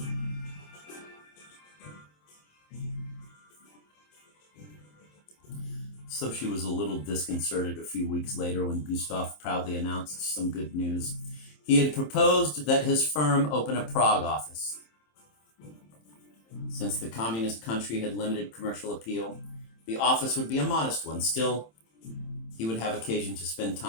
So she was a little disconcerted a few weeks later when Gustav proudly announced some good news. He had proposed that his firm open a Prague office. Since the communist country had limited commercial appeal, the office would be a modest one. Still, he would have occasion to spend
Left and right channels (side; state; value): right; late; 27 ms